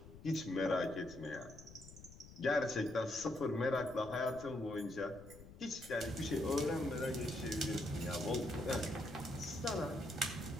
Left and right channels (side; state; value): left; noise; rumble, 17 dB below the sound